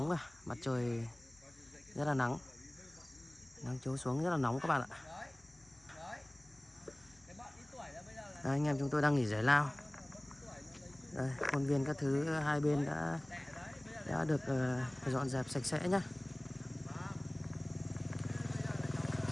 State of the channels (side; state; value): left; noise; hum, 28 dB below the sound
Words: rồi, mặt trời rất là nắng, nắng chiếu xuống rất là nóng các bạn ạ. Đấy, anh em chúng tôi đang nghỉ giải lao. Đây, khuôn viên các thứ hai bên đã được dọn dẹp sạch sẽ nhé.